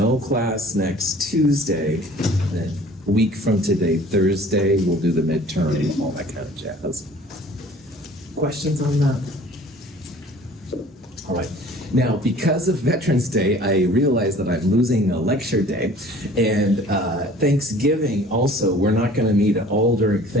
class next Tuesday, then a week from today, Thursday, we'll do the midterm and all that kind of jazz. Questions on that? All right. Now, because of Veterans Day, I realize that I'm losing a lecture day. And Thanksgiving also, we're not going to meet at all during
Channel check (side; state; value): both; normal; correlation 0.49